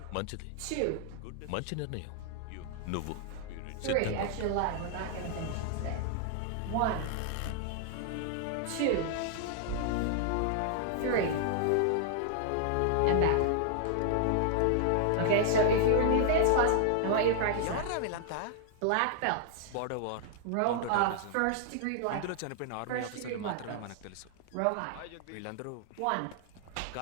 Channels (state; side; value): different; both; correlation 0.00